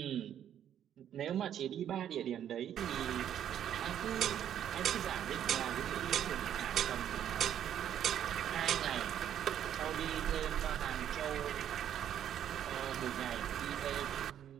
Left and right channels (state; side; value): quieter; left; 10.1 dB